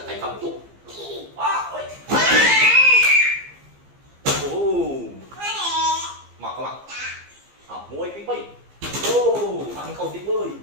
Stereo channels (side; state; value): left; late; 15 ms